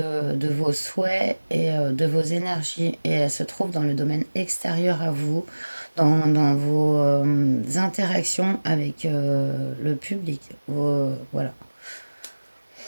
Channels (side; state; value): both; inverted; correlation -1.00